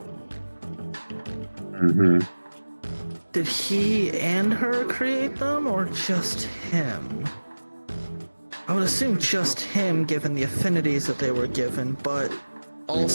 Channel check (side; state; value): both; inverted; correlation -1.00